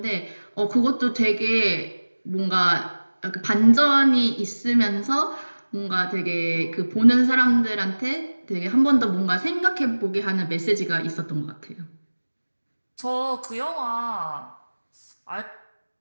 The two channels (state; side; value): inverted; both; correlation -1.00